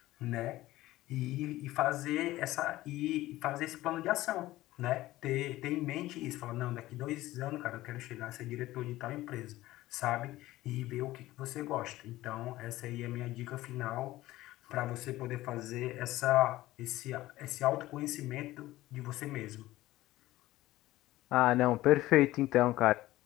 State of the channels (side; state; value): right; quieter; 16.7 dB